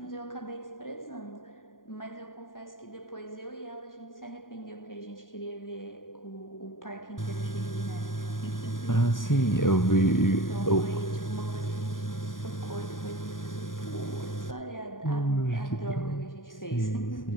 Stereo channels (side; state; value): right; late; 0.90 ms